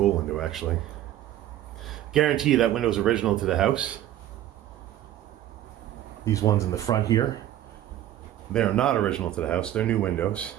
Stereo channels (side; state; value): left; quieter; 12.7 dB